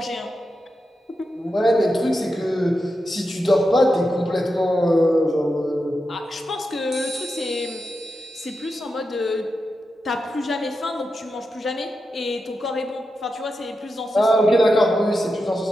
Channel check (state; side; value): normal; both; correlation 0.89